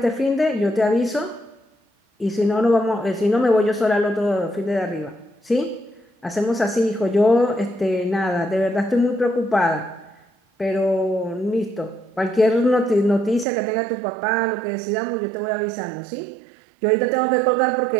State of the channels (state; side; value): drops out; left; at 13.5 s